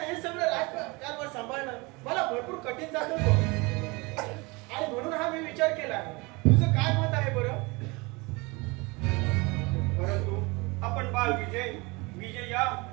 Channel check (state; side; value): quieter; left; 26.0 dB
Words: हे सगळं राजकारभार सांभाळणं मला भरपूर कठीण जातं बघ. आणि म्हणून हा मी विचार केला. तुझं काय मत आहे बरं? परंतु आपण बाळ विजय या